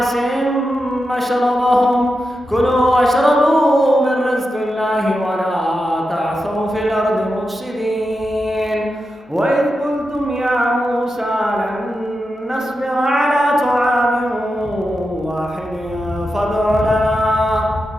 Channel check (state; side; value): normal; both; correlation 0.89